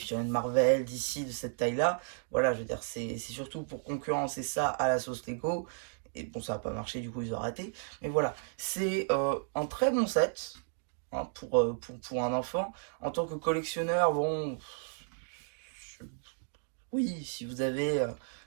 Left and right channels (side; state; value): left; silent; digital silence